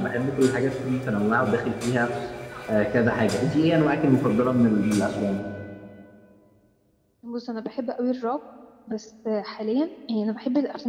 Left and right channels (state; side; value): identical; both; correlation 1.00